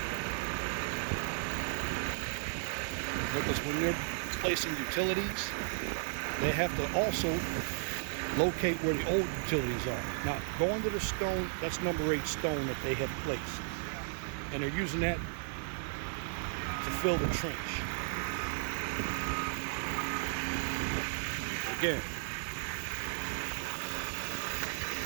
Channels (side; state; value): left; silent; 55 dB below the other